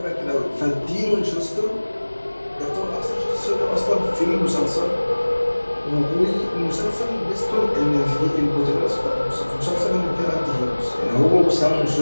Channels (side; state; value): both; inverted; correlation -1.00